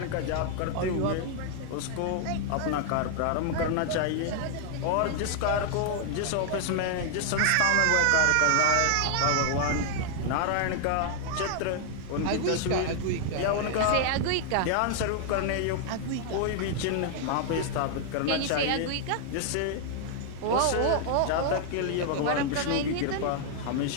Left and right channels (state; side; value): different; both; correlation 0.00